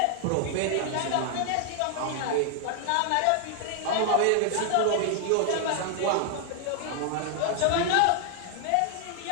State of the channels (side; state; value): both; different; correlation 0.00